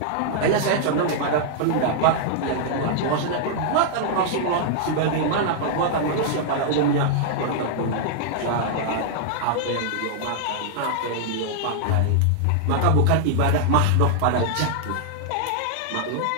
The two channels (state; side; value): different; both; correlation -0.01